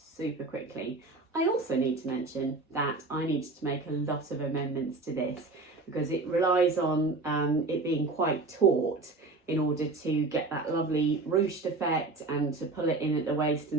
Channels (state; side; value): quieter; left; 3.5 dB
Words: quickly. I also need to mention that I needed to make a lot of amendments to this because it relies on it being quite taut in order to get that lovely ruched effect and to pull it in at the waist